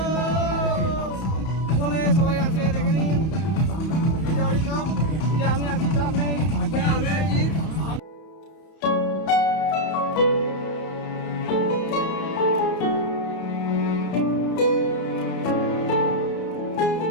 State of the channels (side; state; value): right; late; 31 ms